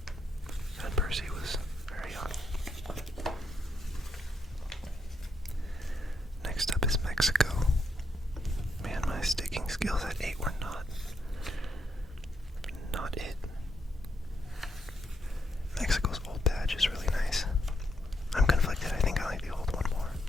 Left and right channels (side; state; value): both; normal; correlation 0.78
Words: And Percy was very young. Next up is Mexico. Man, my sticking skills at 8 were not it. Mexico's old badge is really nice. I'm conflicted. I think I like the old one more.